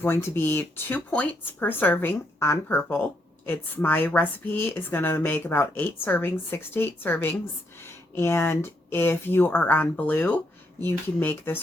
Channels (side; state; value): both; normal; correlation 0.76